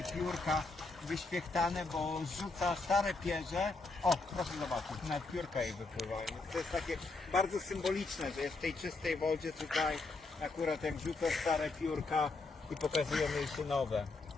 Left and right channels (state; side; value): quieter; right; 3.6 dB